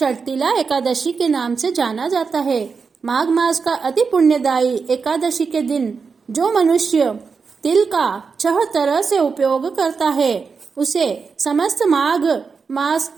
एकादशी के नाम से जाना जाता है। माघ मास का अति पुण्यदायी एकादशी के दिन जो मनुष्य तिल का 6 तरह से उपयोग करता है उसे समस्त माघ मास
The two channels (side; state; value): left; quieter; 5.2 dB